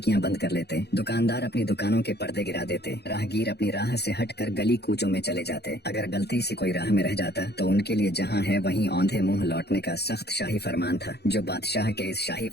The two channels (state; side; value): late; right; 0.48 ms